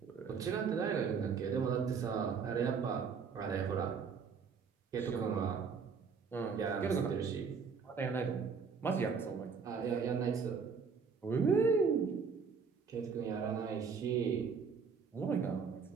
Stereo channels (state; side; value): quieter; left; 5.8 dB